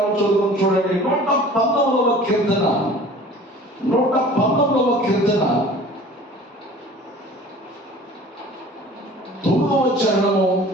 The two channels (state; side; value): normal; both; correlation 0.45